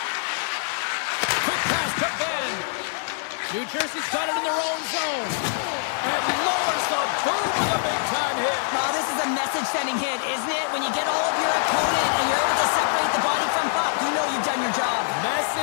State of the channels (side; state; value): right; silent; digital silence